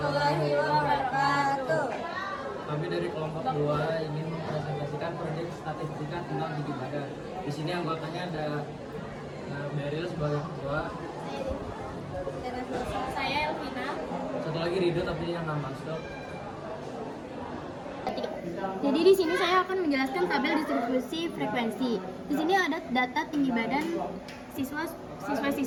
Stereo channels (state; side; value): identical; both; correlation 1.00